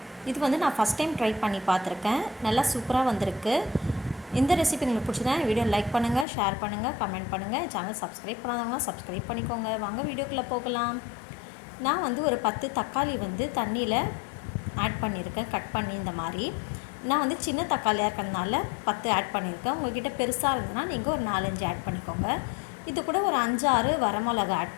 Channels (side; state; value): right; drops out; at 6.2 s